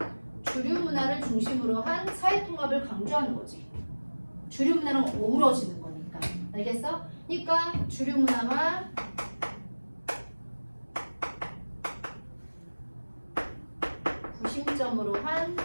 주류 문화를 중심으로 한 사회 통합을 강조하는 거지. 주류 문화랑 어우러지는 거니까. 알겠어? 그러니까 주류 문화와 구심점으로 한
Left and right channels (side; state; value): both; inverted; correlation -1.00